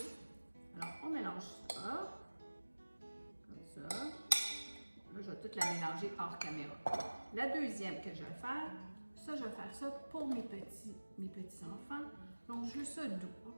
Alors, on mélange ça, comme ça. Là, je vais tout la mélanger hors caméra. La deuxième que je vais faire, ça, je vais faire ça pour mes petits enfants. Donc, je veux ça doux,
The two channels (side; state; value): both; inverted; correlation -1.00